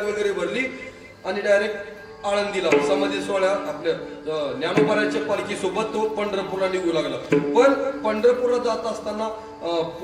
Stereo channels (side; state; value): both; identical; correlation 1.00